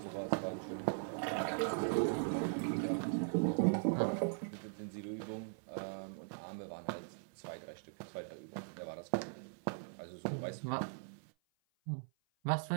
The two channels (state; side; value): silent; left; 51 dB below the other